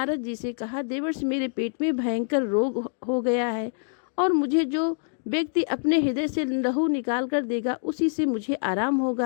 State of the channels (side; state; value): right; silent; digital silence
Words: जी से कहा, देवर्षि, मेरे पेट में भयंकर रोग हो गया है और मुझे जो व्यक्ति अपने हृदय से लहू निकाल कर देगा उसी से मुझे आराम